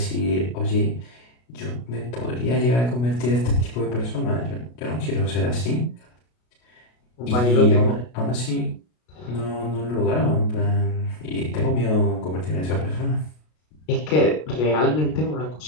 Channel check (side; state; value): right; late; 33 ms